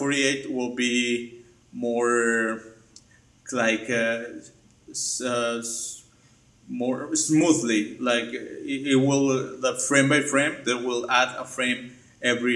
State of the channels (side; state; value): both; identical; correlation 1.00